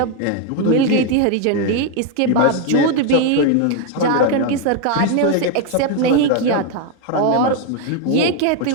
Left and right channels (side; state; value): both; different; correlation 0.01